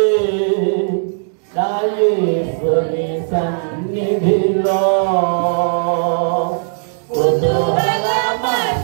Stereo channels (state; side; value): silent; left; digital silence